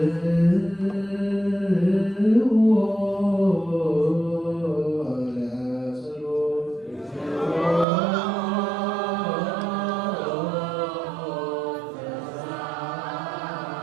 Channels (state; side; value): drops out; left; at 7.9 s